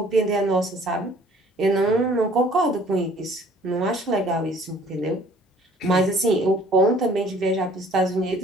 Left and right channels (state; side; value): normal; both; correlation 0.55